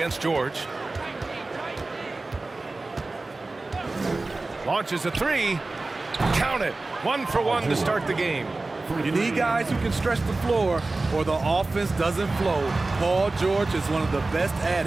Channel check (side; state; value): left; quieter; 3.3 dB